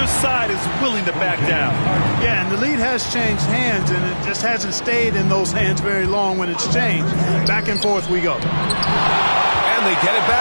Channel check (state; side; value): inverted; both; correlation -1.00